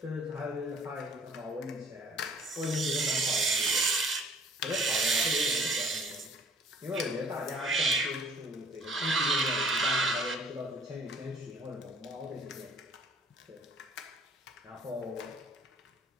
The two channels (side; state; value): both; normal; correlation 0.55